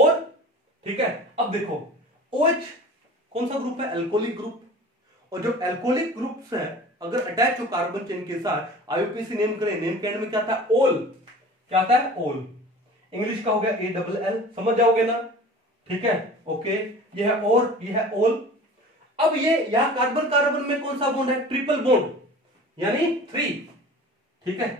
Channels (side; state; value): both; normal; correlation 0.41